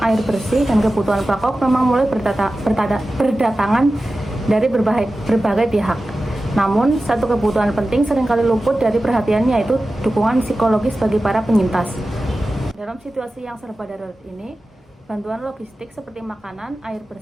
air bersih, dan kebutuhan pokok memang mulai berdatangan dari berbagai pihak. Namun, satu kebutuhan penting seringkali luput dari perhatian, yaitu dukungan psikologis bagi para penyintas. Dalam situasi yang serba darurat ini, bantuan logistik seperti makanan, air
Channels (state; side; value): normal; both; correlation 0.94